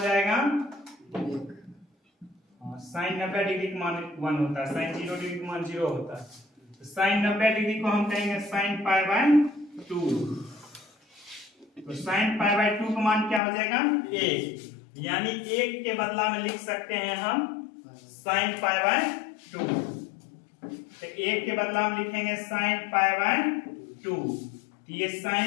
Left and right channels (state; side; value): drops out; right; at 13.4 s